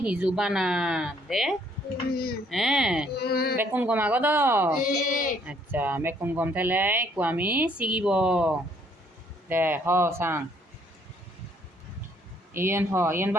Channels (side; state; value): both; normal; correlation 0.65